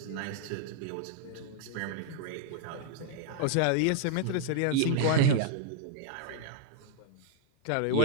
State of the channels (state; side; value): different; both; correlation -0.01